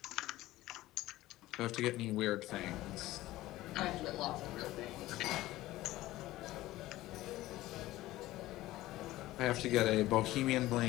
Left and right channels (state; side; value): quieter; right; 16.7 dB